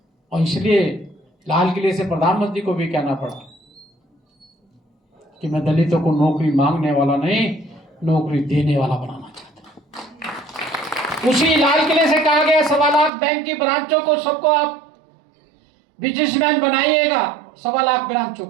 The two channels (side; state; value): left; drops out; at 13.1 s